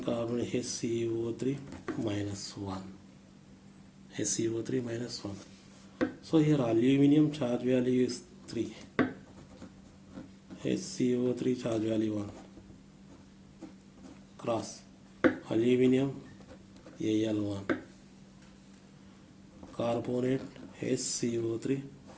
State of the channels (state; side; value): identical; both; correlation 1.00